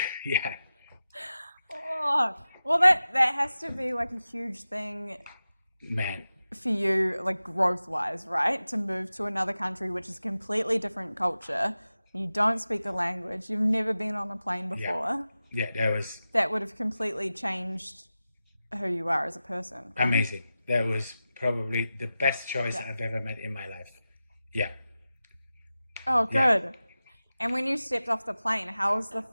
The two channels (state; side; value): inverted; both; correlation -0.94